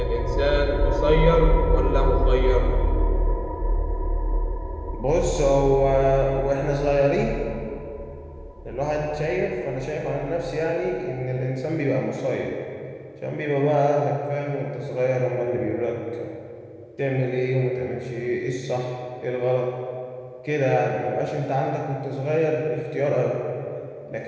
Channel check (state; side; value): identical; both; correlation 1.00